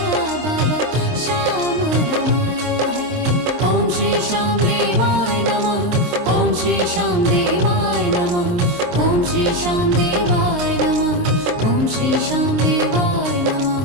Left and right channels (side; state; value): left; late; 23 ms